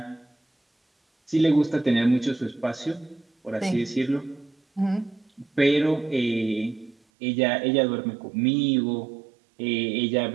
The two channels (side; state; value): left; drops out; at 7.0 s